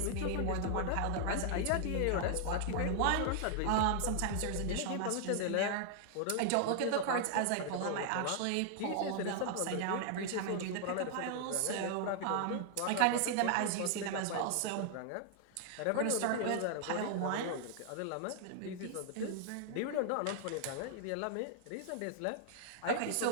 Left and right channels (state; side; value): different; both; correlation 0.00